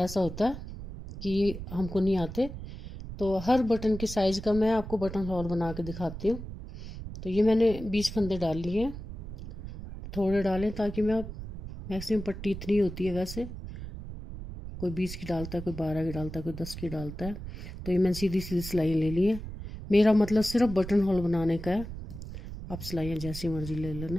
होता है कि हमको नहीं आते, तो हर बटन की साइज़ का मैं आपको बटन होल बना के दिखाती हूँ। तो ये मैंने 20 फंदे डाल लिए हैं, थोड़े डालें ताकि मैं मैक्सिमम पट्टी इतनी होती है, वैसे कोई 20 की डालता है, कोई 12 की डालता है, कोई 10 की डालता है। तो ये मैंने सीधी सीधी सिलाइयाँ ले ली है। मेरा मतलब सिर्फ बटन होल बनाने का है, आप सिलाइयाँ जैसी मर्जी ले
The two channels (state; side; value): noise; right; rumble, 10 dB below the sound